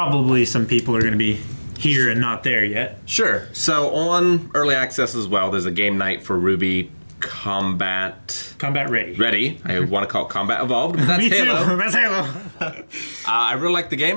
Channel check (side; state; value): both; inverted; correlation -1.00